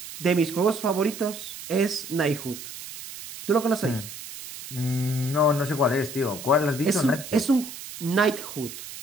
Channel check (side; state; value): right; noise; hiss, 12 dB below the sound